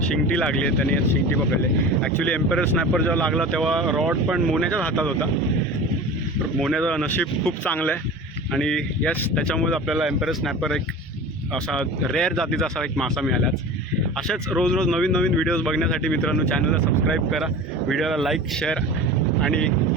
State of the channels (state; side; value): normal; both; correlation 0.35